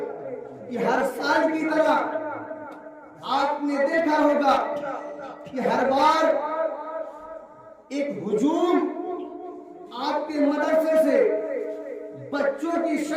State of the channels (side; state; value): both; identical; correlation 1.00